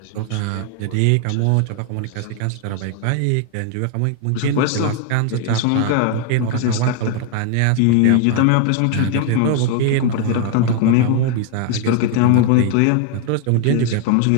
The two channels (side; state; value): both; different; correlation 0.00